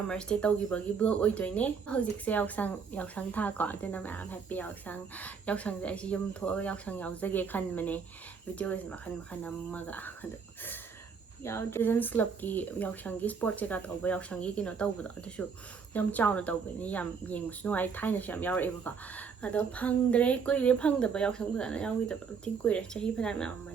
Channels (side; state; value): left; quieter; 5.9 dB